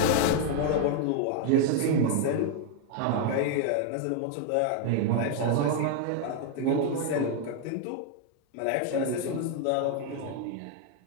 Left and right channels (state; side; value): different; both; correlation 0.00